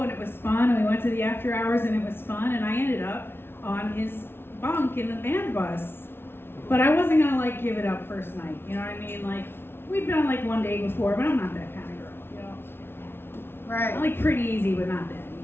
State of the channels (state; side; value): late; right; 0.11 ms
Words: and it was fun, and we went to the after hours and it was fun, and I ended up on his bunk in the band bus. But I wasn't gonna like give it up first night, you know what I mean? Like, we'd been on like one date before, but I'm not that kind of girl, you know? Right. I like pretty easy, but not that